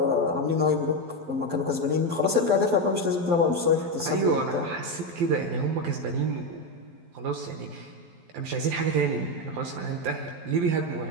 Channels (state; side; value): late; left; 12 ms